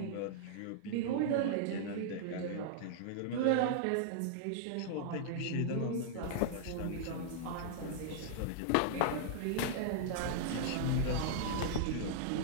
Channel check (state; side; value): different; both; correlation -0.01